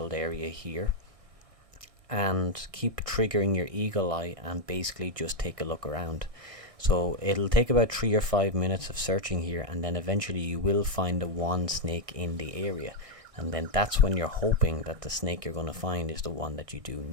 area here and keep triggering your eagle eye and basically just take a look around. So it'll take about 3 or 5 minutes of searching here, and then eventually you will find the one snake in the area, and then that's when you're hoping that the snake you're going to find is the one that you do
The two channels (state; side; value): late; left; 1.6 ms